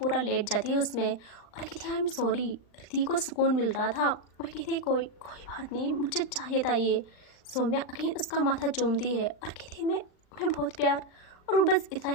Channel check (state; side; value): late; right; 39 ms